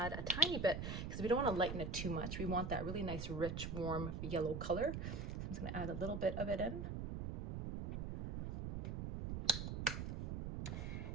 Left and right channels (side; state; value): right; noise; rumble, 4 dB below the sound